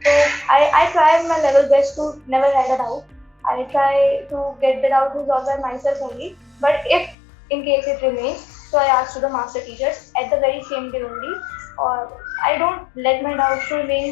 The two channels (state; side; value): drops out; right; at 7.2 s